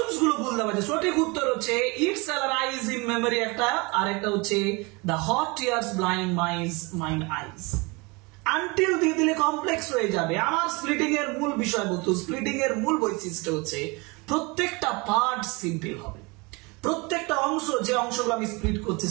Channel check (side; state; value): left; quieter; 27.2 dB